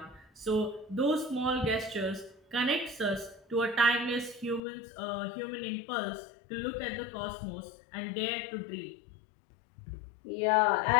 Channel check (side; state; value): right; drops out; at 4.6 s